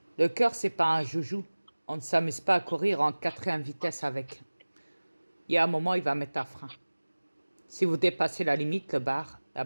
Le cœur, c'est pas un joujou. On ne s'amuse pas à courir en 4e vitesse avec. Il y a un moment, il va mettre un frein. Si vous dépassez la limite,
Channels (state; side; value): inverted; both; correlation -1.00